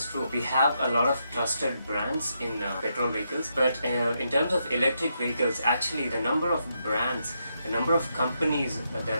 true. We have a lot of trusted brands in petrol vehicles, but in terms of electric vehicles, actually the number of brands, the number of companies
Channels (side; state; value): both; inverted; correlation -0.81